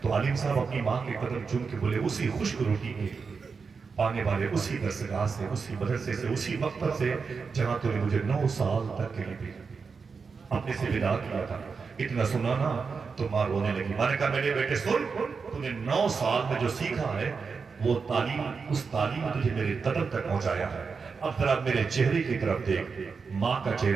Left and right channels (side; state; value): left; quieter; 5.2 dB